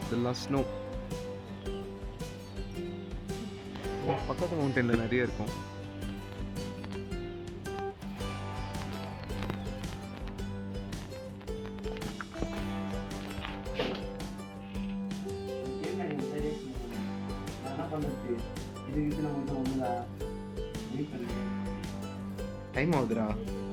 இதெல்லாம் ஸ்னோ. பக்கத்து மவுண்டனில் நிறைய இருக்கும். என்ன பண்ணுறது இதுக்கு நம்ம ஒன்றுதா வெயிட் பண்ணுறேன். டைம் ஆகுதுடா,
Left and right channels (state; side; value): identical; both; correlation 1.00